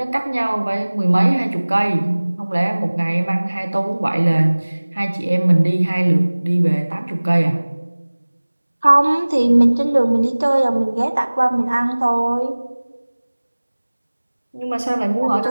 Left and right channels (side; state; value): both; inverted; correlation -1.00